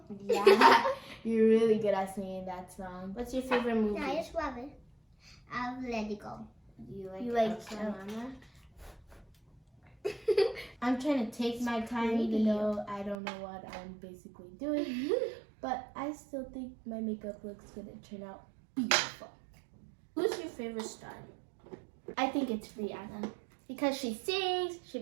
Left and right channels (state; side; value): drops out; left; at 13.2 s